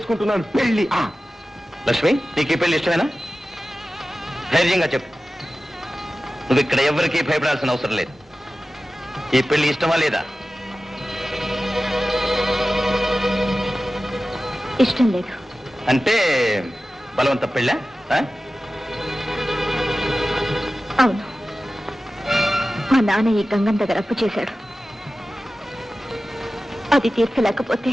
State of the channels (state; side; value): normal; both; correlation 0.95